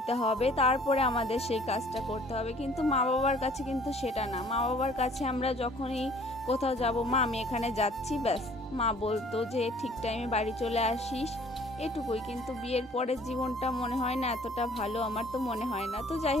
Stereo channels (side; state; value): both; normal; correlation 0.55